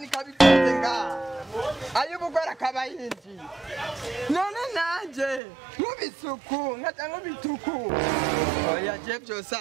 ikabikoze ngaha ay'ubugora akaba yinjiye none nanje nk'ubisuku nkaca nk'ubituku oya je vyose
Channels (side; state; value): left; drops out; at 5.4 s